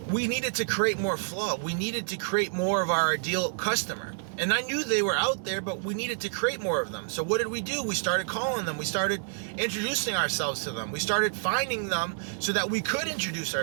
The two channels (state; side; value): silent; left; digital silence